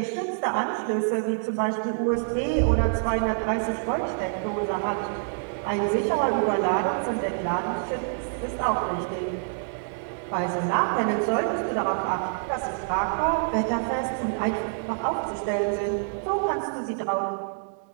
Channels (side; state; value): left; silent; 58 dB below the other